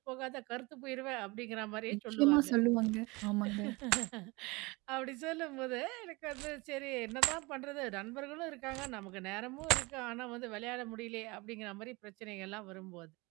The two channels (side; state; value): left; quieter; 24.7 dB